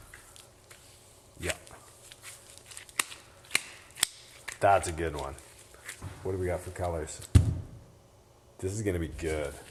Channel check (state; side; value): identical; both; correlation 1.00